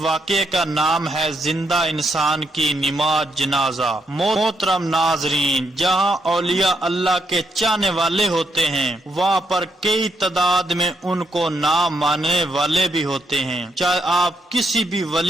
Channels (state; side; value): normal; both; correlation 0.77